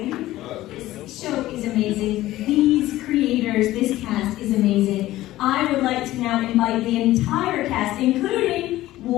This show is amazing. These creators, this cast is amazing. I would like to now invite the entire cast, including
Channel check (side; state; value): right; quieter; 15.8 dB